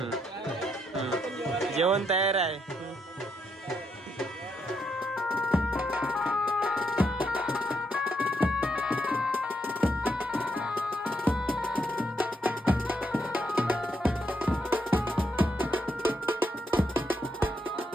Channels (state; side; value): normal; both; correlation 0.78